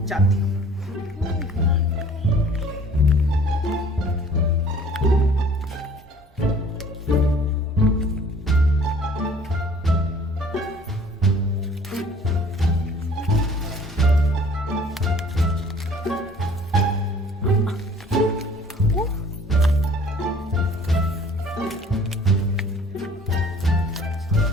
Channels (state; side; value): normal; both; correlation 0.52